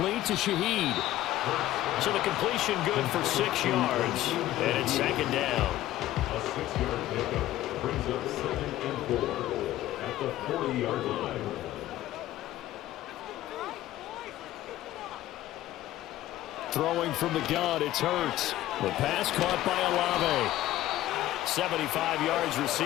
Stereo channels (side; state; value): right; quieter; 14.5 dB